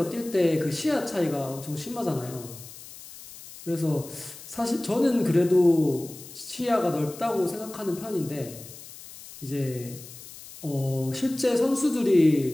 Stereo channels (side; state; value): left; noise; hiss, 16 dB below the sound